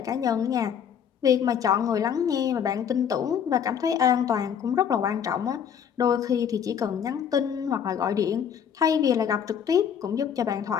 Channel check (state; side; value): quieter; right; 8.2 dB